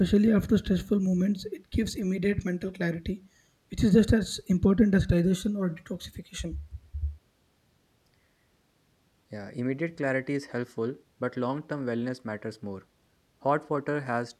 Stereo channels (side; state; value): both; identical; correlation 1.00